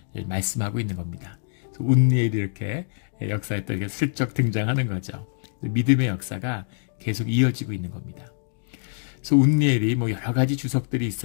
말씀하고 있는 겁니다. 운니엘이 이렇게 역사에 또 이렇게 슬쩍 등장하는 거죠. 믿음의 역사가 계속 이어지고 있는 겁니다. 그래서 운니엘이 여러 가지 주석들이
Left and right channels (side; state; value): right; silent; digital silence